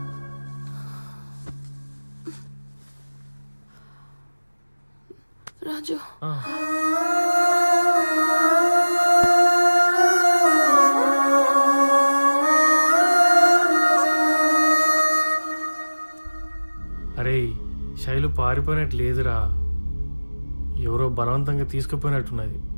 రాజు, అరే శైలు పారిపోయినట్టు లేదురా, ఎవరో బలవంతంగా తీసుకుపోయినట్టున్నది.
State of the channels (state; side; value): inverted; both; correlation -1.00